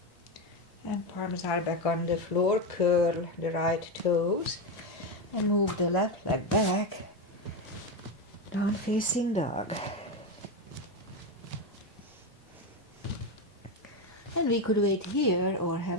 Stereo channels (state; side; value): normal; both; correlation 0.12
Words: And palms are back on the floor, curl the right toes and move the left leg back. Down facing dog. And we could wait here or